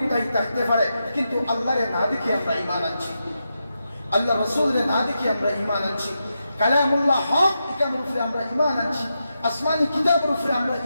থাকতে পারে, কিন্তু আল্লাহরে না দেখে আমরা ঈমান আনছি, আল্লাহ রাসূলের না দেখে আমরা ঈমান আনছি, কালামুল্লাহ হক এর উপরে আমরা ঈমান আনছি, আসমানি কিতাবের উপরে আমরা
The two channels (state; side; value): inverted; both; correlation -0.86